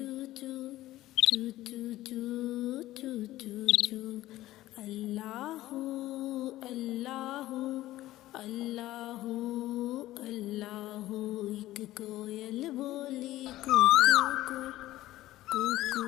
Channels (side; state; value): right; quieter; 15.8 dB